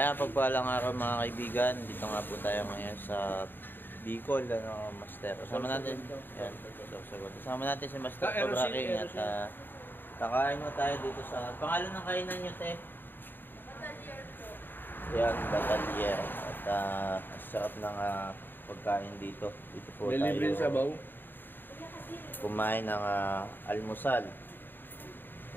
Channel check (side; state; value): right; late; 0.094 ms